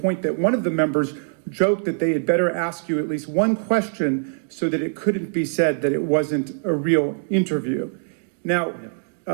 that one of the members joked that they had better ask you at least one question so that it couldn't be said that it wasn't a real interview. Now,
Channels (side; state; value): left; silent; digital silence